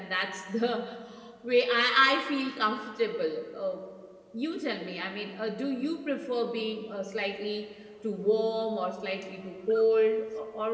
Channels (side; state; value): both; identical; correlation 1.00